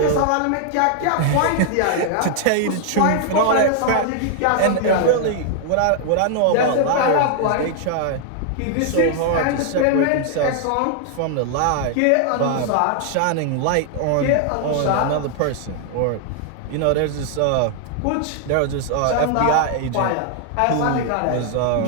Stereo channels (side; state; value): both; different; correlation 0.00